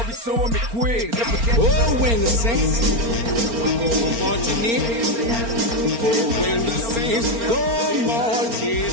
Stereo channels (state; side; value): late; left; 4.4 ms